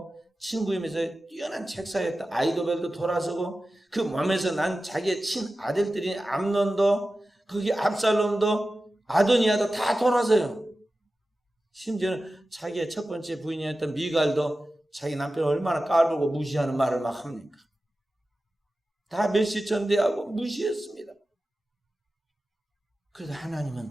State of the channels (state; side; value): normal; both; correlation 0.94